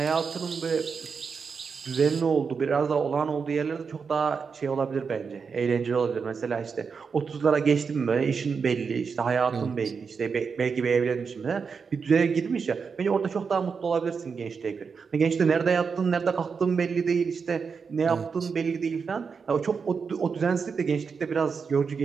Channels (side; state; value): left; quieter; 5.6 dB